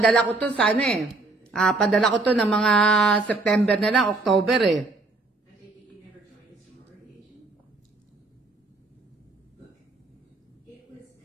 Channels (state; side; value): quieter; left; 3.3 dB